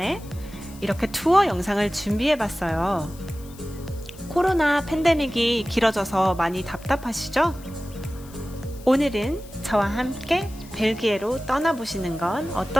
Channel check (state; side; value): noise; left; hiss, 22 dB below the sound